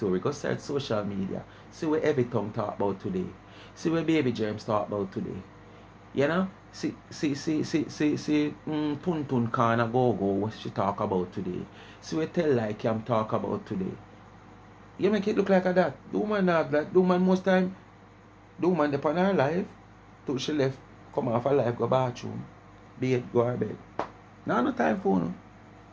Go search social media. See what every tongue talk about today. See what Baby Germs talk about today. You know? See Tun Kana Go what she talk about today. See what Tell Like Cam talk about today. You make it look like that. The woman have that. The woman most time, the woman upon her life, till she left, come off her life, go bathroom, bed, go her bed. Now no time for no.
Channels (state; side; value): identical; both; correlation 1.00